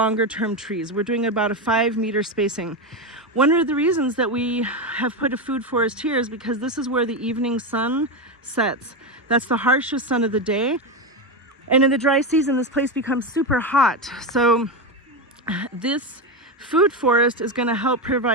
trees. We're doing about a 5-meter spacing. One of the reasons that we have put a food forest here is because this is where the evening sun sets. That's the harshest sun of the day. And in the dry season, this place becomes super hot. So this food forest is going to help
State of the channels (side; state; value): both; normal; correlation 0.13